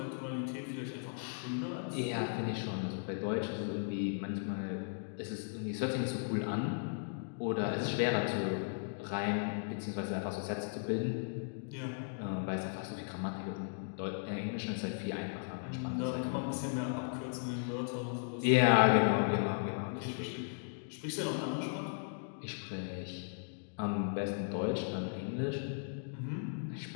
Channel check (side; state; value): right; silent; digital silence